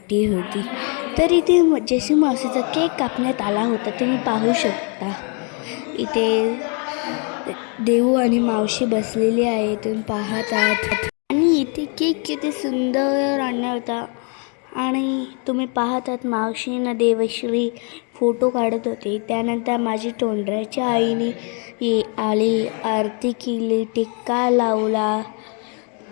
होती. तर इथे जशी मावशीचा केक कापण्यात आला होता. तुम्ही पाहू शकता इथे देऊ आणि मावशी बसलेली आहे, तुम्ही पाहत आहात. आणि इथे केक किती सुंदर आणला होता आणि तुम्ही पाहत आहात मावशीनं देवश्री फोटो काढत होते. त्यानंतर माझी तोंडऱ्याच्या आईने आली, आरती केली, टिक्का लावला,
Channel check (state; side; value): quieter; right; 36.9 dB